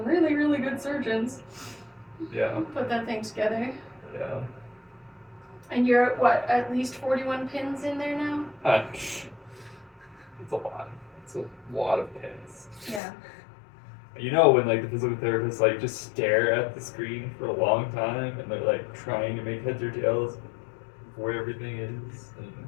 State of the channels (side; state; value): right; drops out; at 13.0 s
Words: really, really good surgeons. Yeah. Put that thing together. Yeah. And you're at what? At least 41 pins in there now? It's a lot. It's a lot of pins. Yeah. You know when like the physical therapists like just stare at the screen for a long time and they're like trying to make heads or tails of where everything is, and